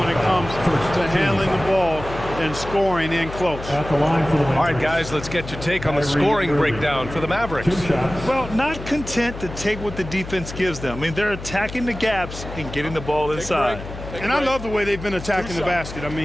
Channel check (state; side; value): noise; left; hum, 11 dB below the sound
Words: it comes to handling the ball and scoring in close. At the line for the Mavericks. All right, guys, let's get your take on the scoring breakdown for the Mavericks. 2 shots. Well, not content to take what the defense gives them. I mean, they're attacking the gaps and getting the ball inside. And I love the way they've been attacking the basket. I